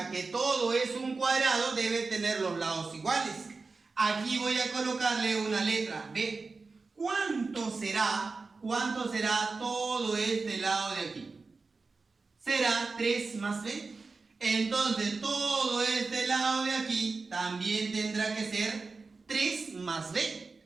que todo es un cuadrado, debe tener los lados iguales. Aquí voy a colocarle una letra B. ¿Cuánto será todo este lado de aquí? Será 3 más B. Entonces todo este lado de aquí también tendrá que ser 3 más B.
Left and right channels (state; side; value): quieter; left; 4.1 dB